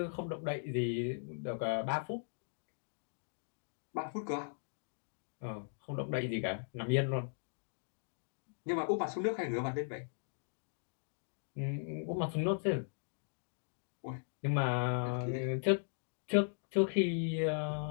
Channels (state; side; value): silent; right; digital silence